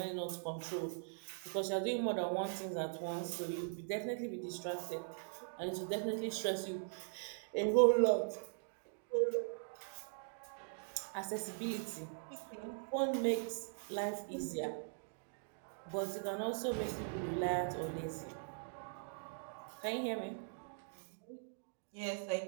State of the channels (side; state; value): left; silent; digital silence